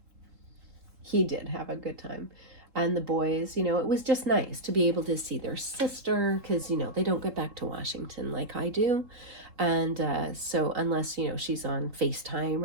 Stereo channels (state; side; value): late; left; 3.7 ms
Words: did have a good time. And the boys, it was just nice to be able to see their sister because, they don't get back to Washington like I do. And so unless, she's on FaceTime